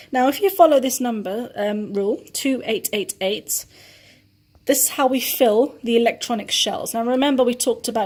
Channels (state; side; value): identical; both; correlation 1.00